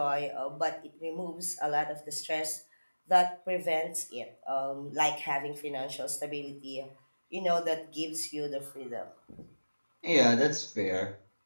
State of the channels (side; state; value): both; inverted; correlation -1.00